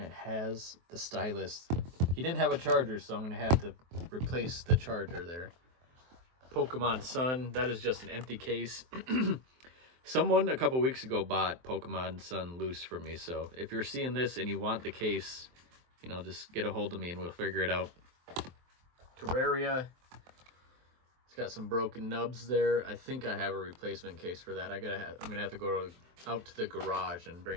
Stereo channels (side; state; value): left; late; 23 ms